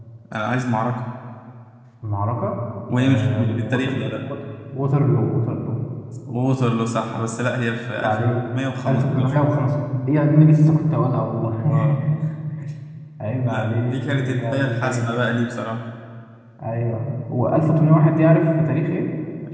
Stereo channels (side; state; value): both; identical; correlation 1.00